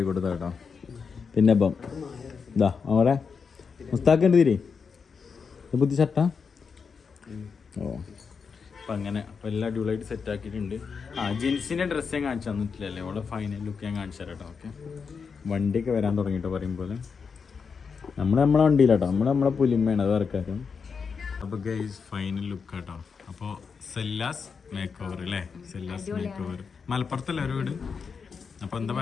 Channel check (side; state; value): right; quieter; 5.7 dB